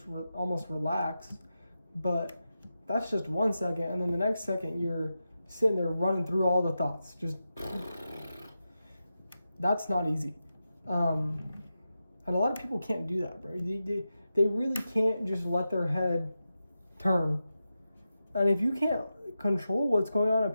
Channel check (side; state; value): both; inverted; correlation -0.91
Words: almost relax. But that's just 1 second, and then the next second you're sitting there running through all the thoughts. Just, that's not easy. And a lot of people can't do that, bro. They really can't just let their head turn. And if you can't control what's going on